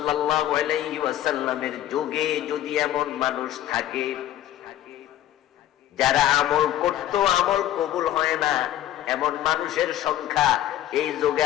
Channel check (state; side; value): quieter; right; 12.5 dB